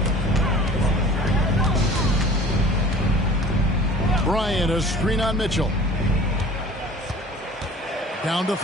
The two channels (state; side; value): normal; both; correlation 0.46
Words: Bryant, a screen on Mitchell. Down to